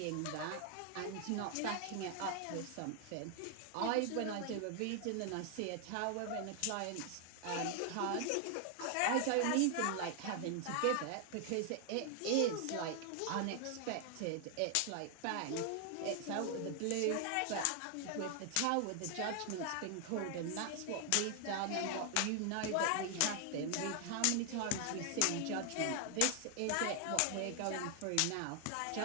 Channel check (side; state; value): both; different; correlation 0.00